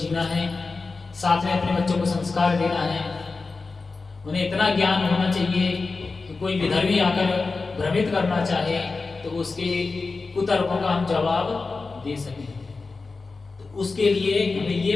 है, साथ में अपने बच्चों को संस्कार देना है। उन्हें इतना ज्ञान होना चाहिए कि कोई विधर्मी आकर भ्रमित करना चाहे तो उसके कुतर्कों का हम जवाब दे सकें। तो उसके लिए हमें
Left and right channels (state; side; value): quieter; right; 4.0 dB